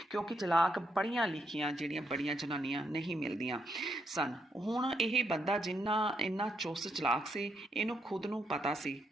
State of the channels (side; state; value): both; normal; correlation 0.78